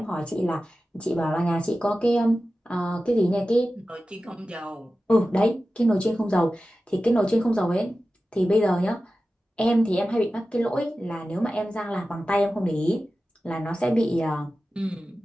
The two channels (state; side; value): normal; both; correlation 0.94